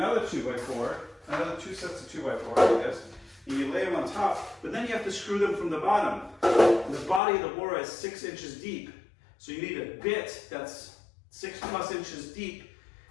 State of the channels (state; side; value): drops out; right; at 7.2 s